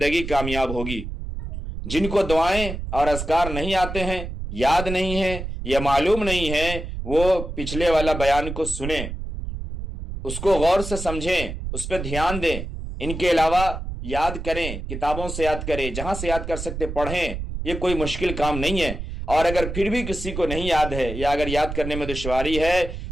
کامیاب ہوگی۔ جن کو دعائیں اور اذکار نہیں آتے ہیں، یاد نہیں ہیں یا معلوم نہیں ہے، وہ پچھلے والا بیان کو سنیں، اس کو غور سے سمجھیں، اس پہ دھیان دیں۔ ان کے علاوہ یاد کریں، کتابوں سے یاد کریں، جہاں سے یاد کر سکتے پڑھیں، یہ کوئی مشکل کام نہیں ہے۔ اور اگر پھر بھی کسی کو نہیں یاد ہے یا اگر یاد کرنے میں دشواری ہے،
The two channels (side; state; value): right; noise; rumble, 6 dB below the sound